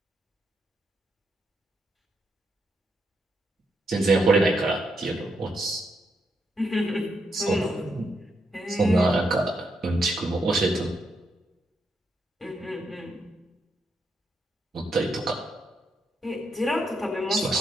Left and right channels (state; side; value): normal; both; correlation 0.80